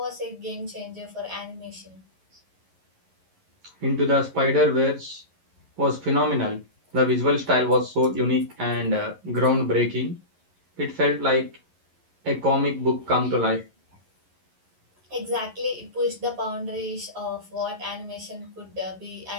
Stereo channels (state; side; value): late; left; 11 ms